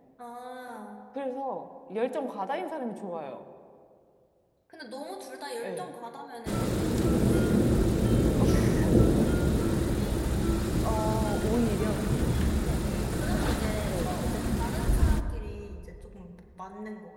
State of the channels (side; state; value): both; identical; correlation 1.00